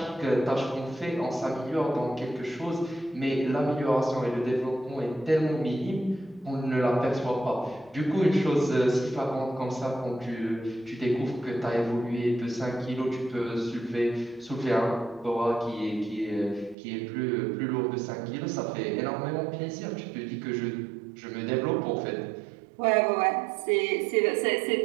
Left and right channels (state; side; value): drops out; left; at 16.8 s